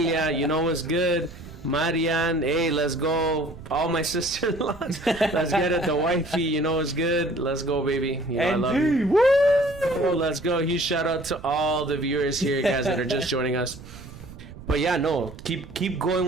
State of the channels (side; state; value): right; noise; rumble, 16 dB below the sound